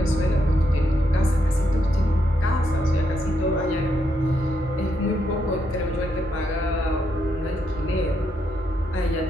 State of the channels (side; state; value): both; normal; correlation 0.79